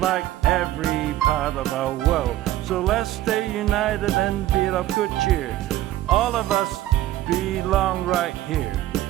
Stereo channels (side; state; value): left; quieter; 14.3 dB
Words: like every part of our world. So let's stay united and be of good cheer. All of us belong right here.